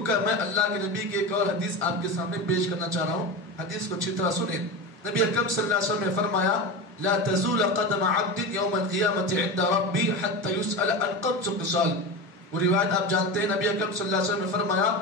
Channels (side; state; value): both; normal; correlation 0.24